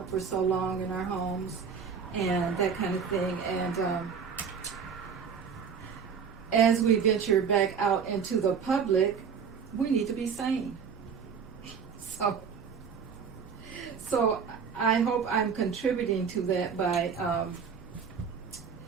for so long in our homes and that kind of thing. And as we venture back out into the public, we need to be sane. So I hope I'm contributing to that by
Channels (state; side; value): quieter; left; 6.4 dB